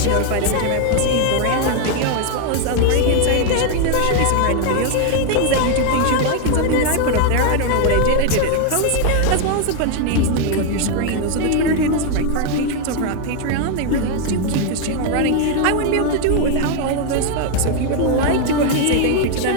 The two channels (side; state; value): both; different; correlation 0.00